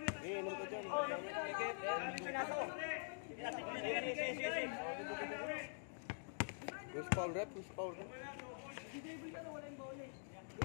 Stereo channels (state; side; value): silent; right; digital silence